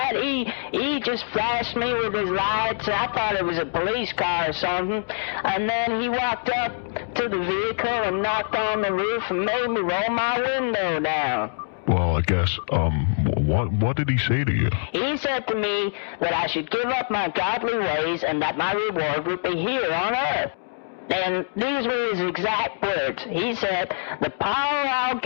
He just flashed me with his lights, and I thought it was a police car or something. And then he walked up to the vehicle and knocked on the roof and made me roll my window down. Well, I guess, what did he say to you? He said to me that I should give up my godly ways and that my reward would be here on earth. And these were his exact words. He said, "The power I'll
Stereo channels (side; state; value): right; silent; digital silence